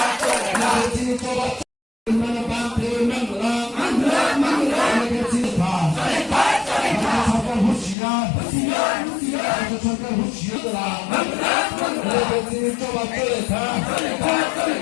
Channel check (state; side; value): drops out; right; at 8.0 s